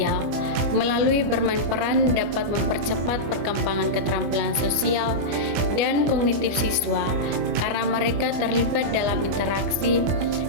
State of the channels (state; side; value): late; left; 25 ms